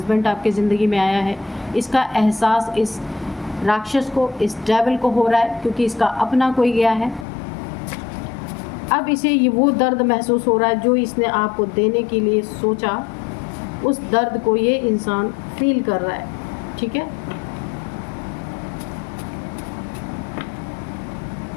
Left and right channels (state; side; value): drops out; right; at 7.2 s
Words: आपकी ज़िंदगी में आया है। इसका एहसास इस राक्षस को, इस डेविल को हो रहा है, क्योंकि इसका अपना कोई गया है। अब इसे ये वो दर्द महसूस हो रहा है जो इसने आपको देने के लिए सोचा, उस दर्द को ये इंसान फील कर रहा है, ठीक है।